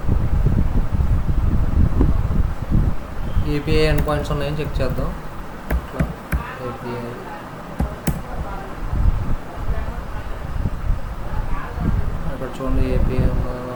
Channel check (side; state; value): both; identical; correlation 1.00